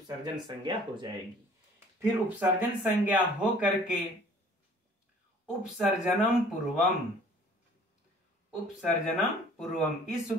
संज्ञा हो जाएगी। फिर उपसर्जन संज्ञा हो करके उपसर्जनम पूर्वम, उपसर्जनम पूर्वम इस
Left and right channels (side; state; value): both; normal; correlation 0.53